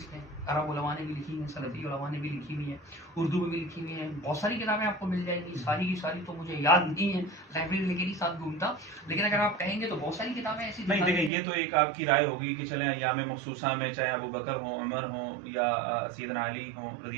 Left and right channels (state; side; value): drops out; left; at 11.3 s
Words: نے, عرب علماء نے بھی لکھی ہیں, سلفی علماء نے بھی لکھی ہوئی ہیں, اردو میں بھی لکھی ہوئی ہیں. بہت ساری کتابیں آپ کو مل جائیں گی, ساری کی ساری تو مجھے یاد نہیں ہے, لائبریری لے کے نہیں ساتھ گھومتا, لیکن اگر آپ کہیں گے تو بہت ساری کتابیں ایسی نہیں. دیکھیں یہ تو ایک آپ کی رائے ہوگی کہ چلیں ایام مخصوصہ میں چاہے ابو بکر ہوں, عمر ہوں یا سیدنا علی ہوں رضی